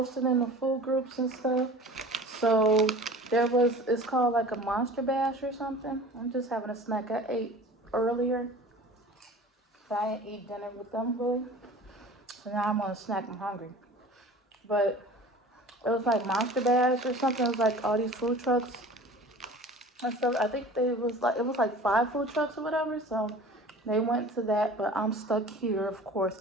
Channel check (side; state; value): both; normal; correlation 0.42